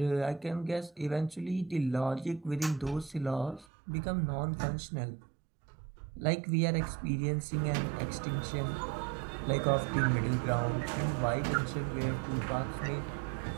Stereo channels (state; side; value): drops out; left; at 3.7 s